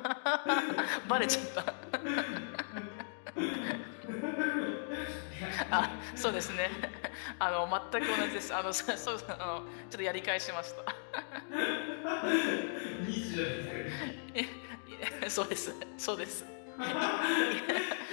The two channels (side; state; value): right; silent; digital silence